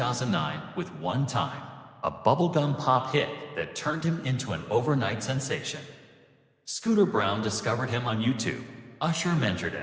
with One Time, a bubblegum pop hit that turned him into an overnight sensation. Scooter Brown discovered him on YouTube, Usher mentored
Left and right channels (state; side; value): identical; both; correlation 1.00